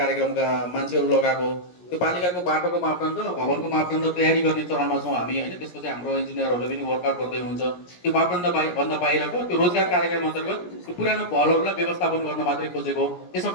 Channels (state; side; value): late; right; 17 ms